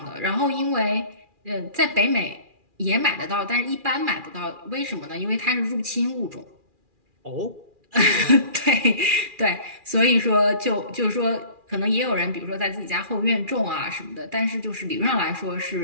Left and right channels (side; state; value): left; late; 2.4 ms